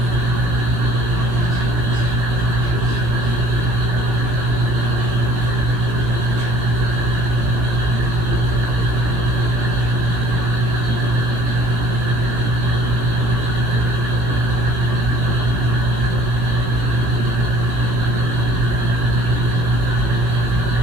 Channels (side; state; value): left; late; 18 ms